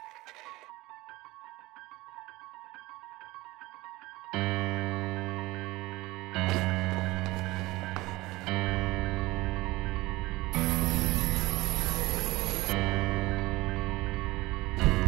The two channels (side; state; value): left; quieter; 20.1 dB